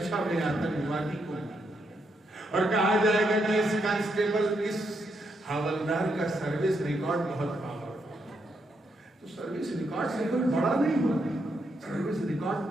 میں آتنکوادی کو، اور کہا جائے گا کہ اس کانسٹیبل، اس حوالدار کا سروس ریکارڈ بہت پاورفل ہے۔ تو سروس ریکارڈ سے کوئی بڑا نہیں ہوتا، سروس ریکارڈ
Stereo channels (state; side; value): normal; both; correlation 0.79